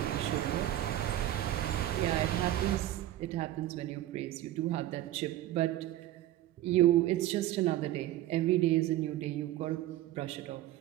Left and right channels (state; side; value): quieter; left; 14.1 dB